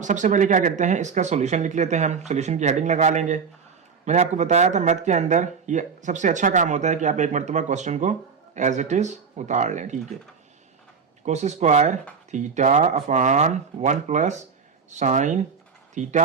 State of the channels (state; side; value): quieter; left; 5.8 dB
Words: सबसे पहले क्या करते हैं, इसका सॉल्यूशन लिख लेते हैं, हम सॉल्यूशन की हेडिंग लगा लेंगे। मैंने आपको बताया था मैथ के अंदर ये सबसे अच्छा काम होता है कि आप एक मरतबा क्वेश्चन को एज इट इज उतार लें, ठीक है। Cos square theta upon 1 plus sine